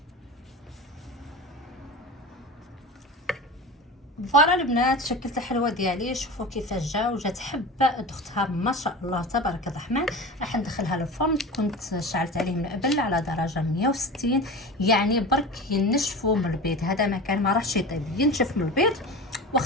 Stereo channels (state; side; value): normal; both; correlation 0.31